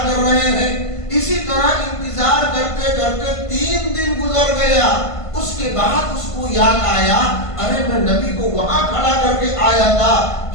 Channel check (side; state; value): right; late; 1.5 ms